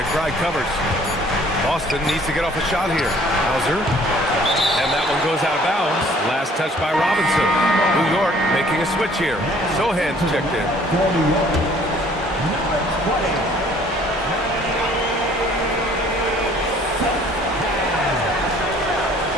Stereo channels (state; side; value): normal; both; correlation 0.56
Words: covers. Boston needs to get off a shot here. Hauser. And that one goes out of bounds. Last touch by Robinson. New York making a switch here. Sohan's checked in.